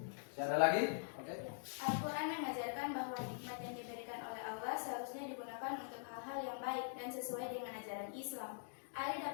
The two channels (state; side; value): silent; right; digital silence